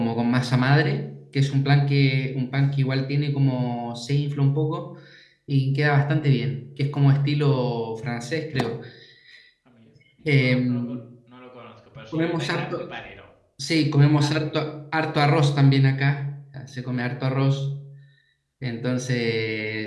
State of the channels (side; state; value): both; identical; correlation 1.00